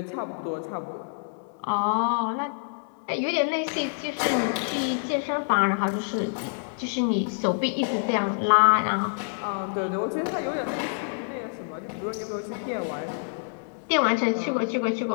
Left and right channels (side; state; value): right; silent; digital silence